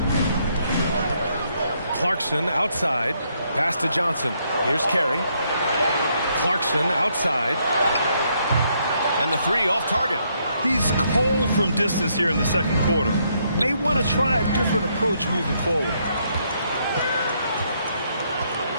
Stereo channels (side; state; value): both; inverted; correlation -0.73